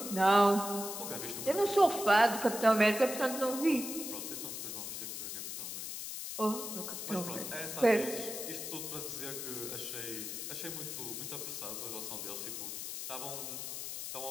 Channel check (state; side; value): noise; left; hiss, 6 dB below the sound